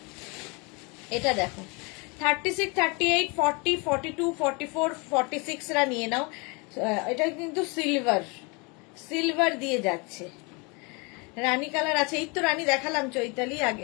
এটা দেখো 36, 38, 40, 42, 44, 46 রা নিয়ে নাও। এটা কিন্তু সিলভার দিয়ে যাচ্ছে, রানী কালার আছে। এই তো রানী দেখালাম চৈতালি,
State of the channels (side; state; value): right; quieter; 29.8 dB